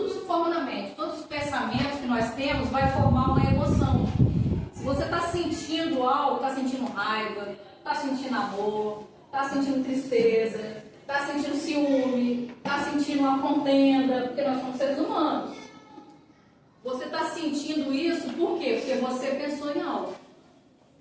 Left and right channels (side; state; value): both; identical; correlation 1.00